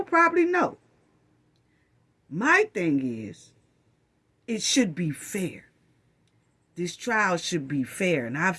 probably no. My thing is, it should be fair. This trial should be fair. And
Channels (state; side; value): identical; both; correlation 1.00